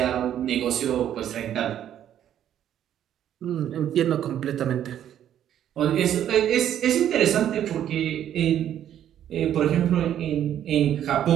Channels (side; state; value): left; quieter; 10.6 dB